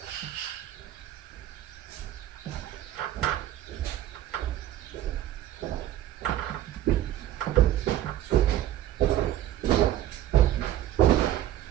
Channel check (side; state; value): left; quieter; 12.8 dB